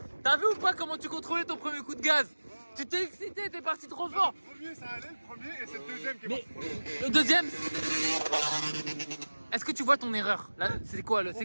T'as vu ou pas comment tu contrôlais ton premier coup de gaz? Tu t'es excité, t'es parti trop fort! Le premier, ça allait, le premier, et c'est le deuxième qui est Mais parti. le deuxième... Est-ce que tu vois ton erreur? Là, c'est quoi le...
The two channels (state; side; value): inverted; both; correlation -1.00